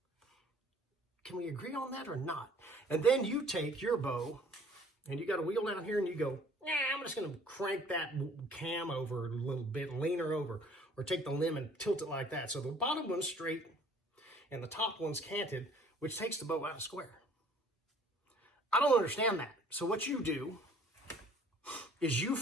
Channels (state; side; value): normal; both; correlation 0.55